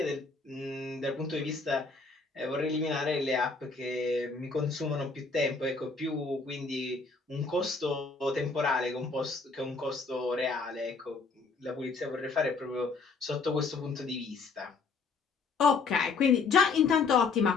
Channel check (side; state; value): right; quieter; 4.4 dB